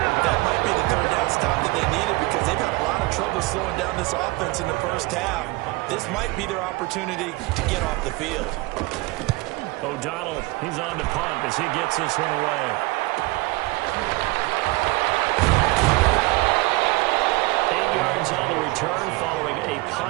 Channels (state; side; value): quieter; left; 22.7 dB